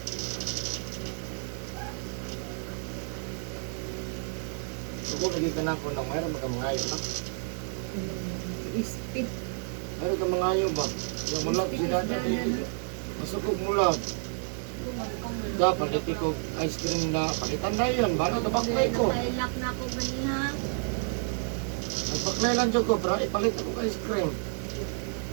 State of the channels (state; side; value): silent; left; 55 dB below the other